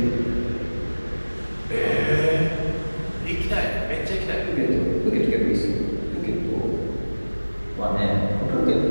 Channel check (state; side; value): inverted; both; correlation -1.00